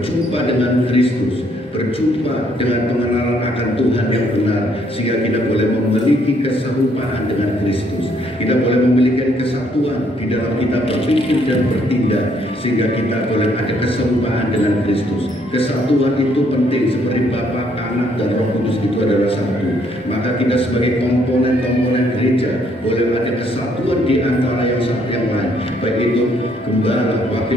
dengan Kristus, berjumpa dengan pengenalan akan Tuhan yang benar, sehingga kita boleh memiliki keserupaan dengan Kristus. Kita boleh memiliki kesatuan di dalam kita berpikir dan bertindak, sehingga kita boleh ada keserupaan dengan Kristus. Kesatuan itu penting, seperti Bapa, Anak, dan Roh Kudus itu adalah satu. Maka kita sebagai komponen-komponen gereja boleh ada kesatuan di antara yang satu yang lain, baik itu gembala,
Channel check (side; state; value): both; normal; correlation 0.68